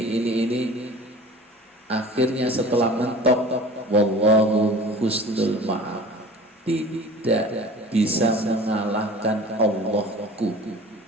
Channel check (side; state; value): both; normal; correlation 0.42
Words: akhirnya setelah mentok, wallahu husnul ma'af, tidak bisa mengalahkan Allahku.